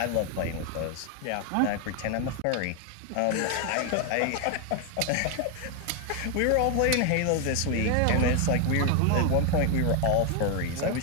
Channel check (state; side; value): different; both; correlation 0.01